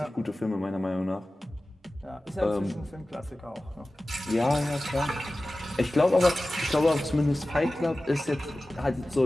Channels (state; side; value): normal; both; correlation 0.96